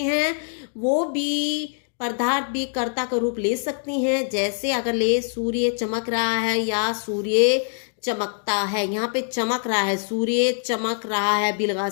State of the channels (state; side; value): silent; right; 63 dB below the other